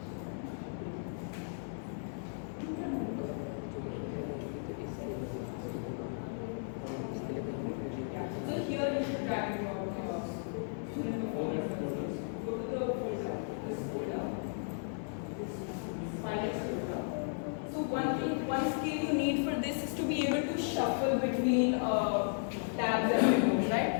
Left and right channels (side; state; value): right; silent; 54 dB below the other